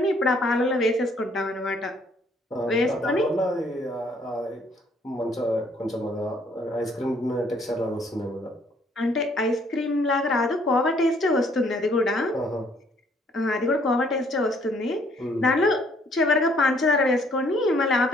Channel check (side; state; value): both; normal; correlation 0.64